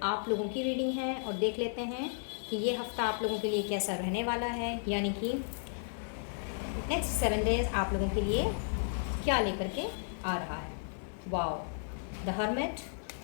आप लोगों की रीडिंग है। और देख लेते हैं कि ये हफ्ता आप लोगों के लिए कैसा रहने वाला है, यानी कि नेक्स्ट 7 डेज आप लोगों के लिए क्या लेकर के आ रहा है। वाओ, द हर्मिट,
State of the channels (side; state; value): right; silent; digital silence